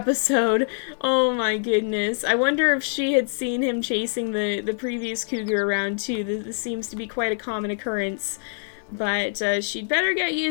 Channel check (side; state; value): right; silent; 55 dB below the other